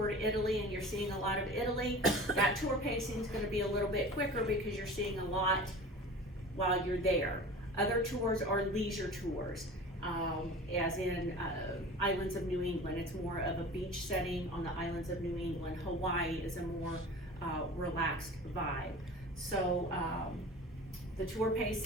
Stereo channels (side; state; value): both; normal; correlation 0.38